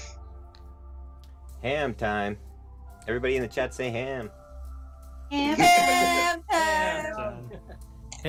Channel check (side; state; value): both; identical; correlation 1.00